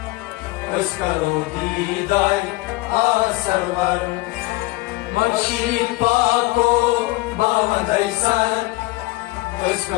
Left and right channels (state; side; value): quieter; right; 21.4 dB